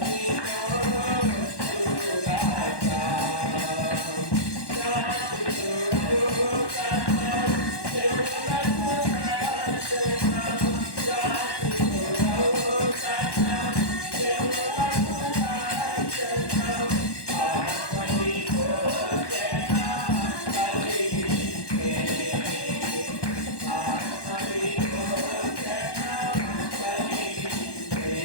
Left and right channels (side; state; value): right; late; 1.1 ms